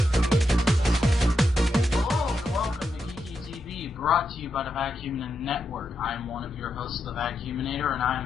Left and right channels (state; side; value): normal; both; correlation 0.84